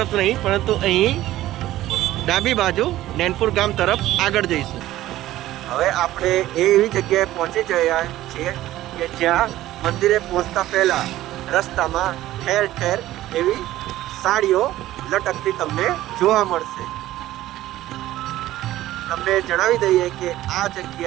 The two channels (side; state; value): left; quieter; 15.0 dB